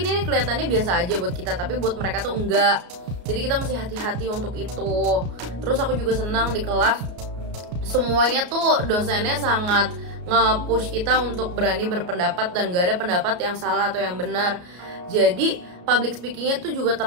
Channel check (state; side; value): late; left; 33 ms